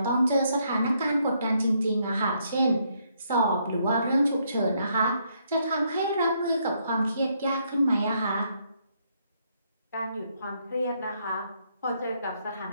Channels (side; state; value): both; inverted; correlation -0.73